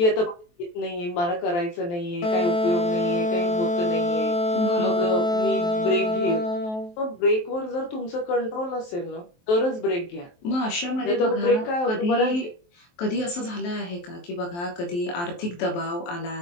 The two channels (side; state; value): right; late; 23 ms